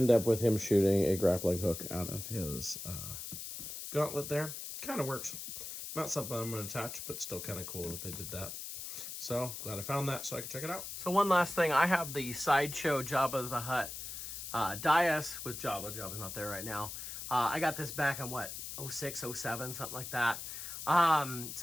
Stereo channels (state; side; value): noise; left; hiss, 8 dB below the sound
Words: up with him shooting a grappling hook out of his gauntlet there. Kind of works. Not something I'm going to attach, but still kind of cool that they did that. So, glad I found that so I could check it out. So one last thing, I have the Sideshow Jabba the Hutt dais with Jabba. Jabba's not there right now. I got this back in, what, 06, 07, something like that. It's